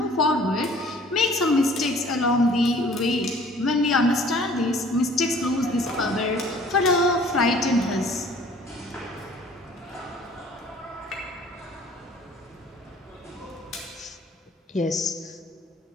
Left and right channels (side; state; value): both; normal; correlation 0.53